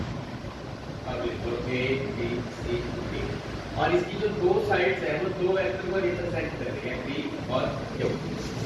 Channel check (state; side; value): identical; both; correlation 1.00